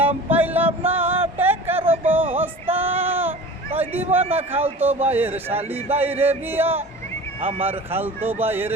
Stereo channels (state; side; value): normal; both; correlation 0.38